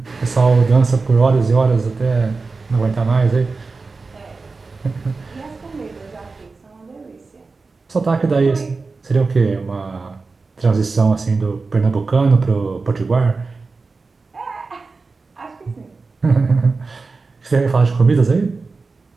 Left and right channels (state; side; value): quieter; left; 4.1 dB